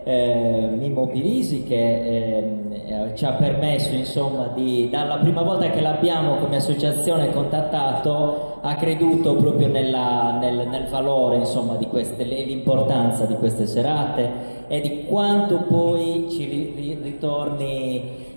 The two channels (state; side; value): inverted; both; correlation -1.00